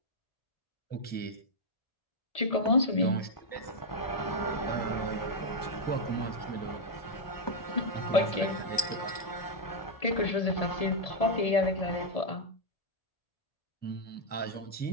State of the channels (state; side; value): late; right; 1.7 ms